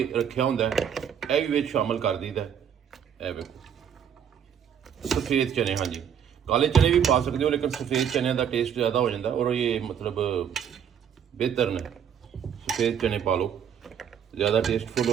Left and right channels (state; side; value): quieter; left; 8.3 dB